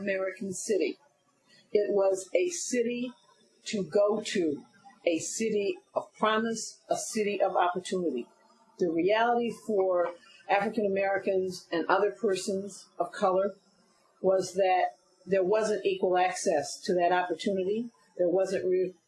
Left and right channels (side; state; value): both; identical; correlation 1.00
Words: city. It was a city to go to, a city of promise, a city of opportunity. The reality for African Americans and other persons of color was that there wasn't equal access to that opportunity. There wasn't